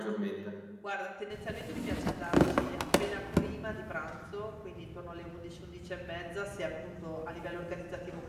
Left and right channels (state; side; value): identical; both; correlation 1.00